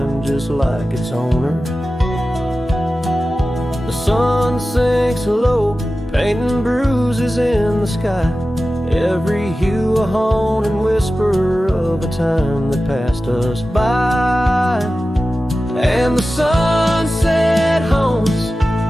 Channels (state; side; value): normal; both; correlation 0.94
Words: just like its owner. The sun sinks low, painting bruises in the sky, every hue a haunting whisper of a time that passed us by. And the sunset haunts